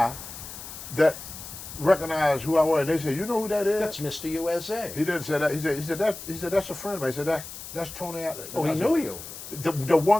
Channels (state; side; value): noise; left; hiss, 12 dB below the sound